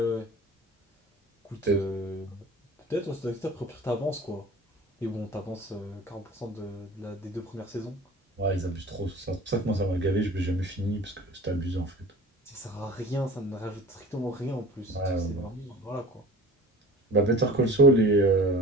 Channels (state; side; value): normal; both; correlation 0.40